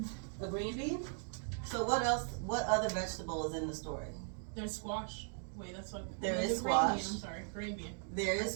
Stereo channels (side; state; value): left; silent; 52 dB below the other